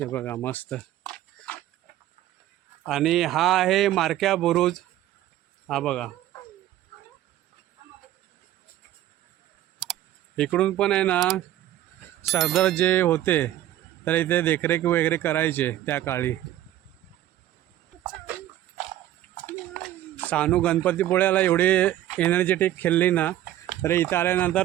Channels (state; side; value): quieter; left; 13.3 dB